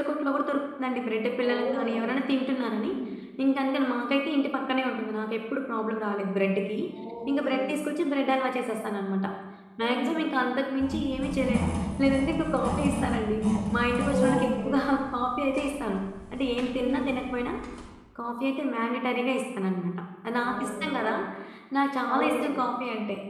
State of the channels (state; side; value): identical; both; correlation 1.00